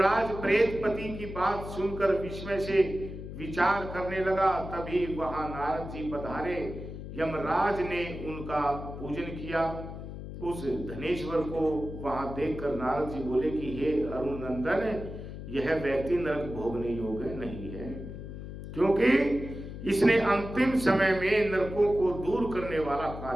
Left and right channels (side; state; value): left; noise; hum, 10 dB below the sound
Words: प्रेतपति की बात सुनकर विस्मय से विचार करने लगा। तभी वहां नारद जी पधारे। यमराज ने उनका पूजन किया। उस धनेश्वर को वहां देखकर नारद जी बोले कि हे अरुण नंदन, यह व्यक्ति नरक भोगने योग्य नहीं है, क्योंकि इसने अंतिम समय में नरकों को दूर करने वाला